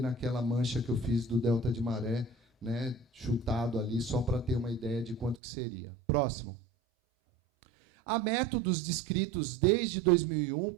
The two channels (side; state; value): left; drops out; at 5.4 s